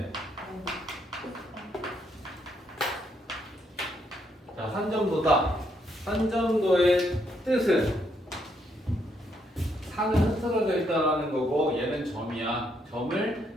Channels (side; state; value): both; normal; correlation 0.74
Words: 자, 산점도다. 산점도의 뜻은 산은 흐트러져 있다라는 거고 얘는 점이야.